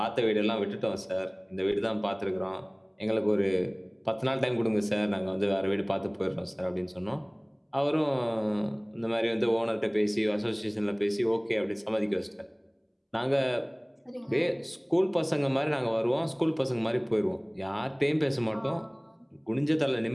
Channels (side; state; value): both; identical; correlation 1.00